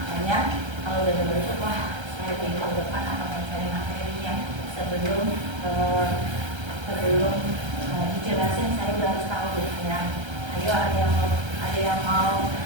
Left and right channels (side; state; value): left; late; 1.3 ms